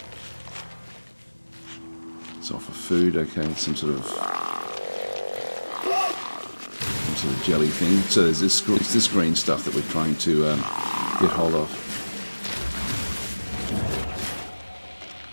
It's off of food, okay, some sort of jelly thing. So there's this green stuff that we're trying to get hold of.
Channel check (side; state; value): both; inverted; correlation -1.00